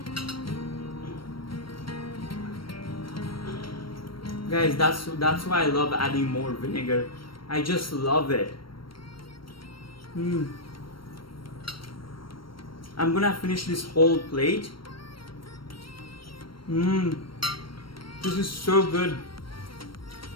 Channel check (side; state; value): right; late; 0.74 ms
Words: Guys, that's why I love adding more vinegar. I just love it. I'm gonna finish this whole plate. This is so good.